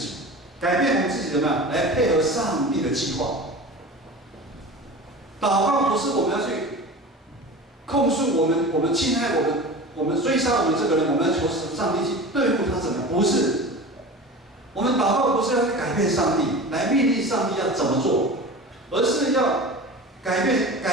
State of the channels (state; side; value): normal; both; correlation 0.34